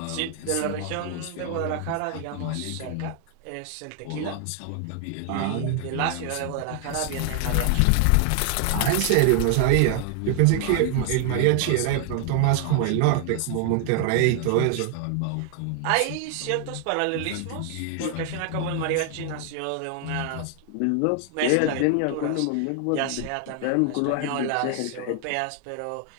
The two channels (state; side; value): different; both; correlation 0.00